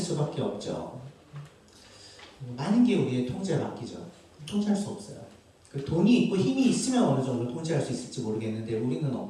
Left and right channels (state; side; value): identical; both; correlation 1.00